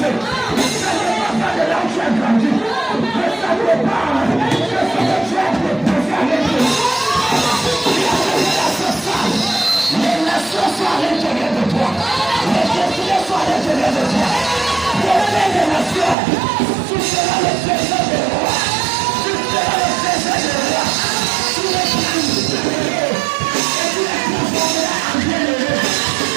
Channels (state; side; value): drops out; left; at 16.2 s